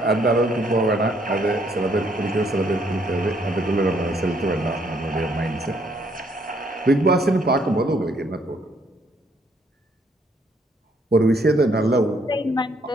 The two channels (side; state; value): both; normal; correlation 0.69